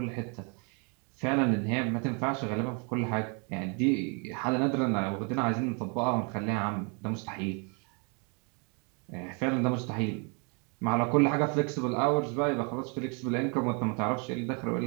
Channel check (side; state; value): left; quieter; 35.5 dB